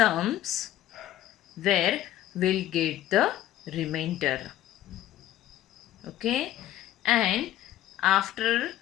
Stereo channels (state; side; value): quieter; right; 13.2 dB